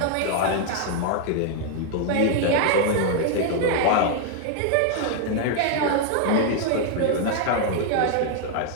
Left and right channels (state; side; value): different; both; correlation 0.00